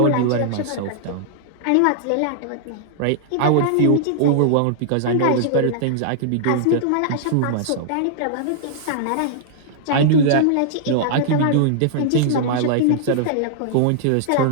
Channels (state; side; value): different; both; correlation -0.01